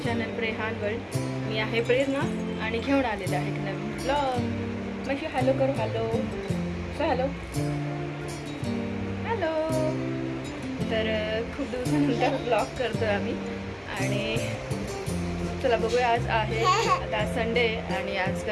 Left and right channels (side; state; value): both; identical; correlation 1.00